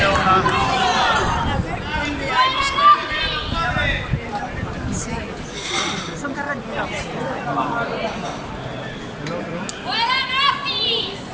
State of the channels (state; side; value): identical; both; correlation 1.00